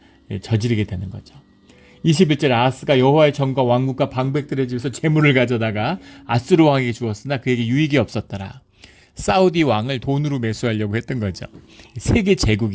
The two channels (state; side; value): identical; both; correlation 1.00